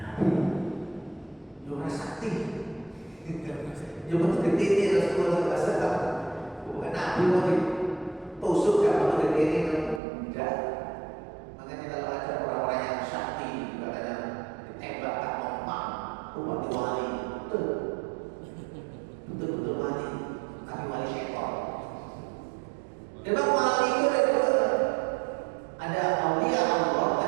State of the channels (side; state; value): left; drops out; at 10.0 s